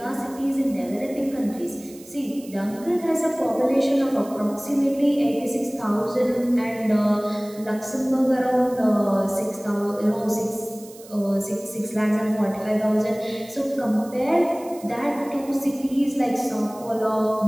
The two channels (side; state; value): right; noise; hiss, 21 dB below the sound